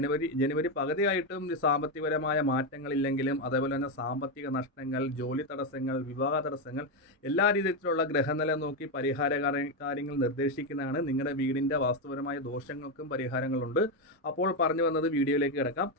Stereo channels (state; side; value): normal; both; correlation 0.07